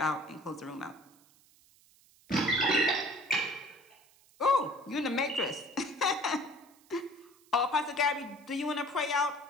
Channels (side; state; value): right; noise; hiss, 29 dB below the sound